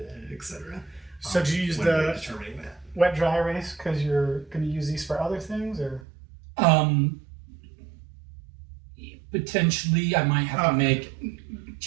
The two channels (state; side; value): drops out; left; at 6.0 s